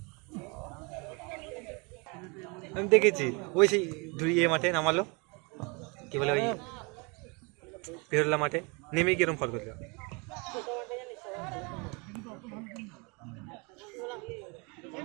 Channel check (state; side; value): quieter; left; 30.5 dB